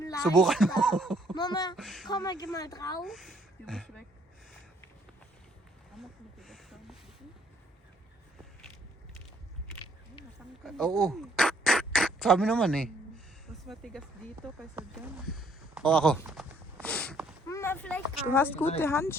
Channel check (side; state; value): both; normal; correlation 0.65